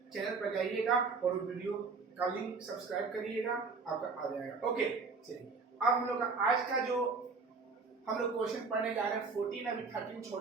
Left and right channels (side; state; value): left; quieter; 4.5 dB